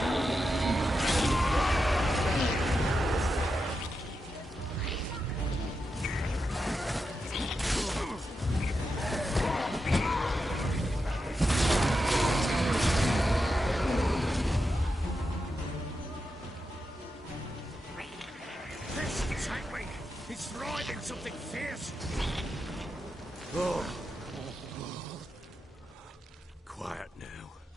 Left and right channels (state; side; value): normal; both; correlation 0.87